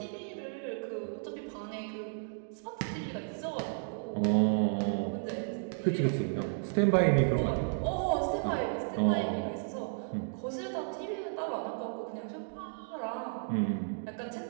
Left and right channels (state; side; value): silent; left; digital silence